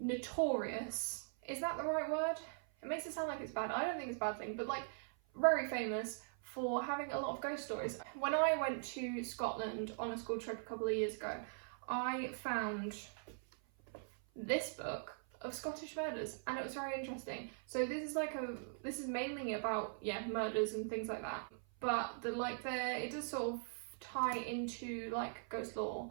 Is that the right word? It makes it sound like it's bad. I don't think it's a bad thing, but like very famous for having a lot of ghost stories. When I went to Scotland on a school trip a couple of years ago, I found this book of Scottish murders, and it was very interesting. So this is mainly about murders and things like that, but it does sort of tie into like ghost lore,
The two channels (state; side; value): silent; left; 50 dB below the other